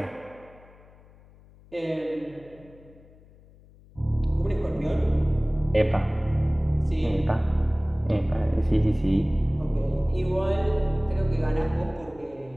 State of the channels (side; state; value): left; noise; hum, 25 dB below the sound